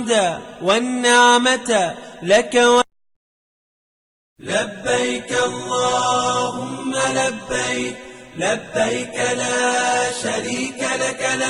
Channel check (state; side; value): identical; both; correlation 1.00